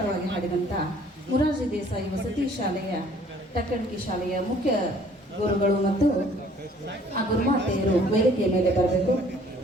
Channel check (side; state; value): both; normal; correlation 0.57